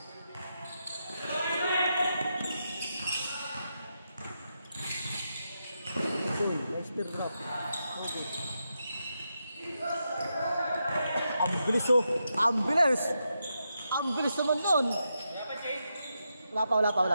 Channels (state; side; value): inverted; both; correlation -0.85